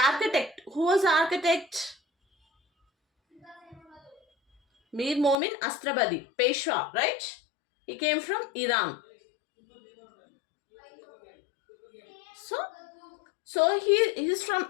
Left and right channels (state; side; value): drops out; right; at 5.4 s